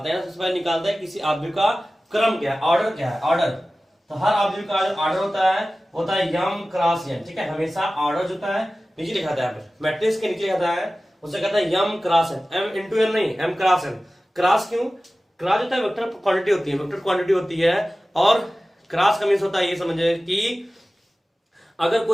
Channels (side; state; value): both; normal; correlation 0.96